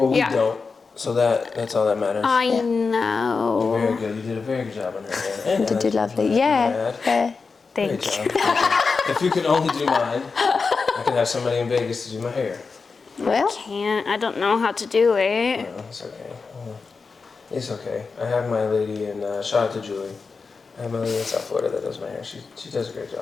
we Yeah. don't. So that's all that matters. I Very know. good. You did a very good job on her hair. You did do lovely. Yeah. Great Thank job. you. If you could only do mine, I could have somebody in Vegas to do my hair. Well, Can't, I don't know how to do it. No, it's okay. It's okay. I have my lady in, shout out to Julie. I have my lady in South Florida that does my hair. She does a great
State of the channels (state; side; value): quieter; right; 4.7 dB